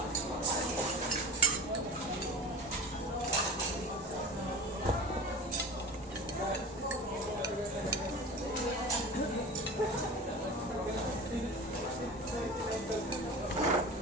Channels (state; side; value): normal; both; correlation 0.33